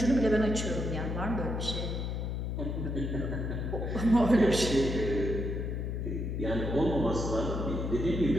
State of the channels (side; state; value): left; noise; hum, 2 dB below the sound